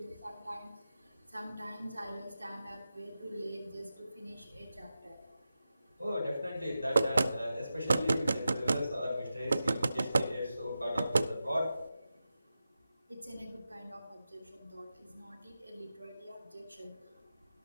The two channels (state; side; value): inverted; both; correlation -0.91